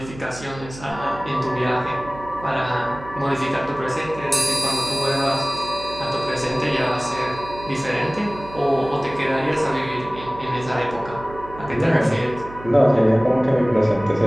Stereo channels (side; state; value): right; noise; hum, 16 dB below the sound